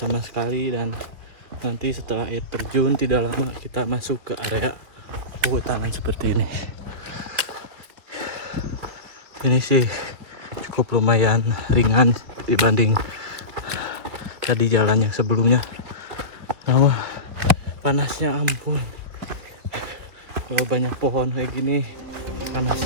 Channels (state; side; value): late; left; 2.6 ms